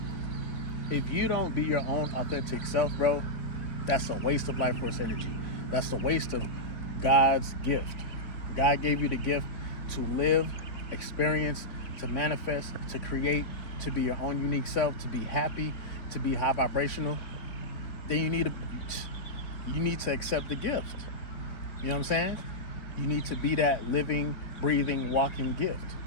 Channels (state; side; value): late; right; 3.6 ms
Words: if you don't be your own authentic self, bro, that's a waste of life force energy. That's a waste of God's gift. God gave you the gift to live, experience, to manifest, to create, to be your own unique self, to be happy, to be high vibrational. Then you need to accept the gift. You know what I'm saying? You need to be that living, breathing, walking gift,